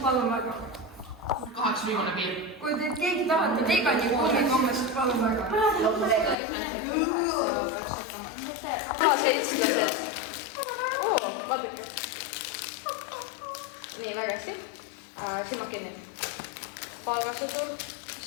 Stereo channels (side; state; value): right; drops out; at 6.4 s